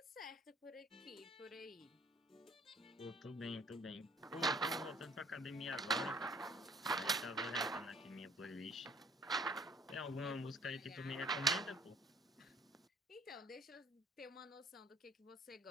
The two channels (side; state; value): both; normal; correlation 0.57